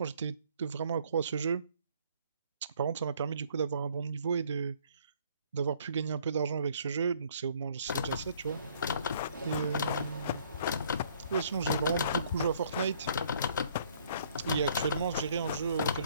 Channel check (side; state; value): both; inverted; correlation -0.60